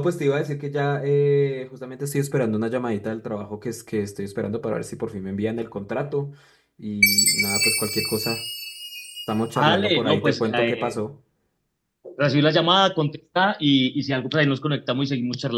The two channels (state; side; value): identical; both; correlation 1.00